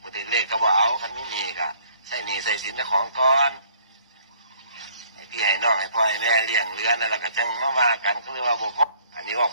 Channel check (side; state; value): both; inverted; correlation -0.60